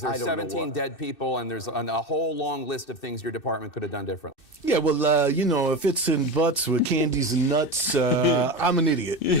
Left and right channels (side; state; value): right; late; 2.6 ms